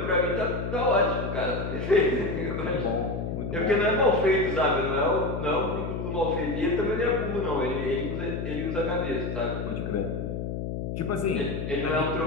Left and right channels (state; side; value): noise; left; hum, 4 dB below the sound